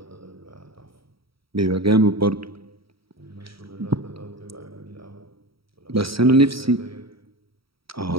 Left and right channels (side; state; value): left; late; 0.75 ms